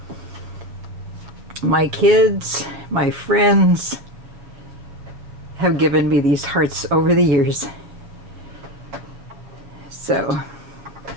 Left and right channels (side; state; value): left; late; 7.5 ms